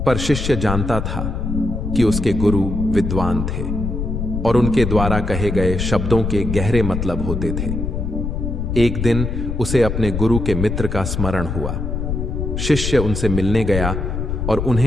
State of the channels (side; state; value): left; noise; rumble, 3 dB below the sound